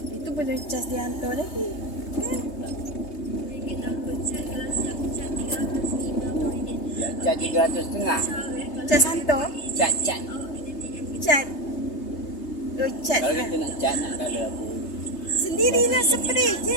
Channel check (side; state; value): right; late; 3.3 ms